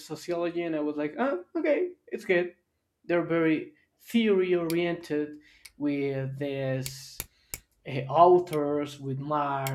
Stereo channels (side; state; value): both; identical; correlation 1.00